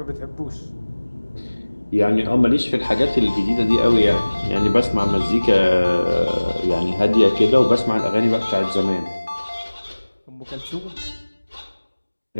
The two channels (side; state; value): both; inverted; correlation -1.00